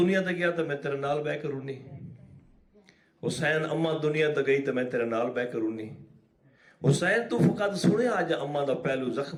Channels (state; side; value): identical; both; correlation 1.00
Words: تے گیا تو میں تیرے نال بہ کے رونی حسین اماں دنیا تے گئی تو میں تیرے نال بہ کے رونی حسین تو فقط سنے آج اماں دا پہلو